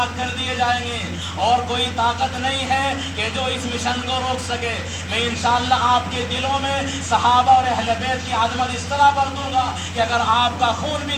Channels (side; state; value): both; identical; correlation 1.00